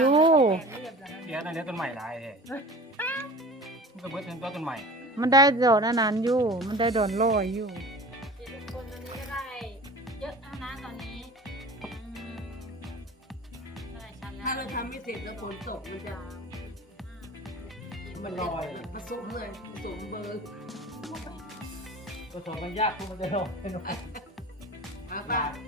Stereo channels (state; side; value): normal; both; correlation 0.39